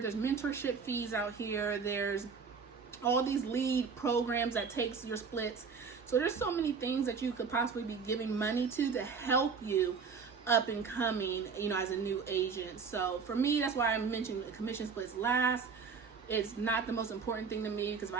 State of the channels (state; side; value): quieter; left; 5.5 dB